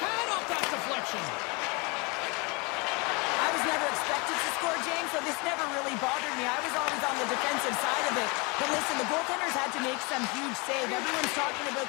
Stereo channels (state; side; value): quieter; right; 29.1 dB